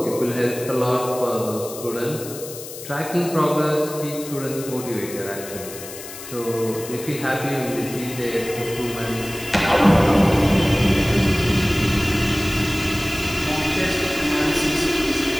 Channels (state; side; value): noise; left; hiss, 12 dB below the sound